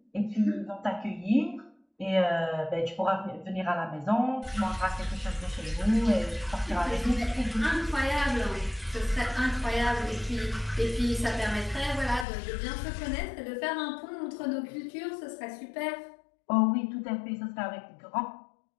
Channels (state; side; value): drops out; right; at 12.2 s